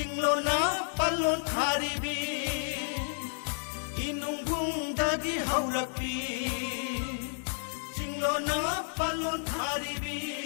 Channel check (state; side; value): silent; right; 57 dB below the other